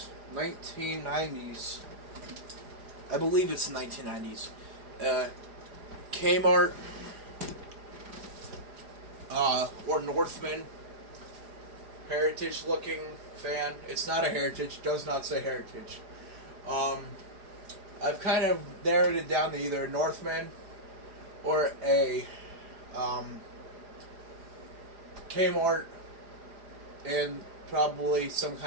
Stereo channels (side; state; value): left; late; 4.9 ms